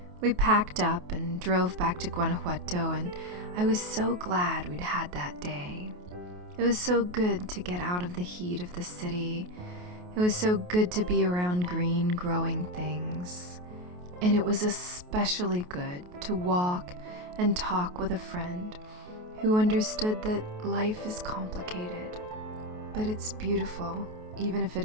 We packed up and drove back to Guanajuato, and I was so glad we'd had that day. It was so good to get out of the heat of the city. It was so good to be around green, growing things. And it was especially good to walk and talk with a friend who understood that life is complicated, but it's beautiful, even if it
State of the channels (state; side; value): late; left; 28 ms